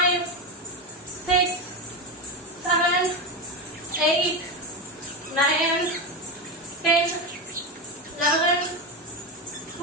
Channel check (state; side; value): normal; both; correlation 0.15